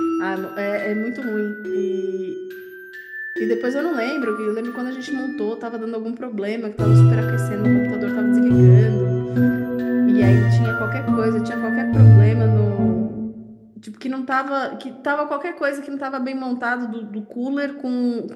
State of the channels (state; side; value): identical; both; correlation 1.00